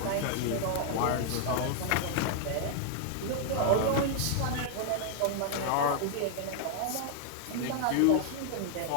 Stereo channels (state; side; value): different; both; correlation 0.00